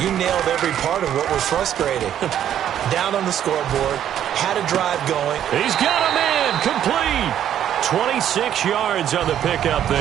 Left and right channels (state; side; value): quieter; left; 10.4 dB